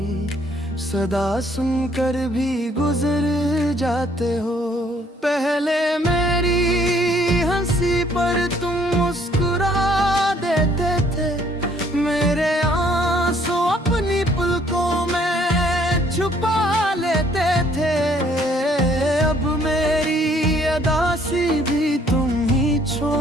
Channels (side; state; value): both; normal; correlation 0.63